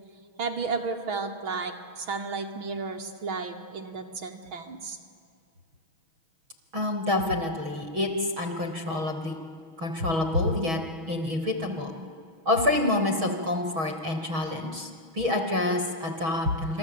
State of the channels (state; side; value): late; left; 6.2 ms